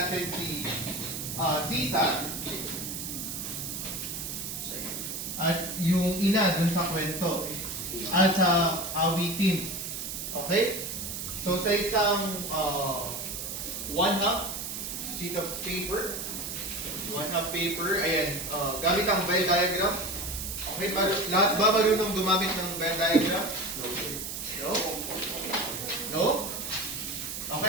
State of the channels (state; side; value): noise; right; hiss, 5 dB below the sound